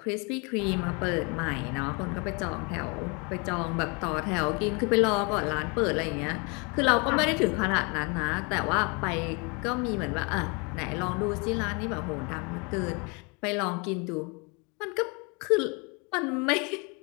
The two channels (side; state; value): right; quieter; 31.5 dB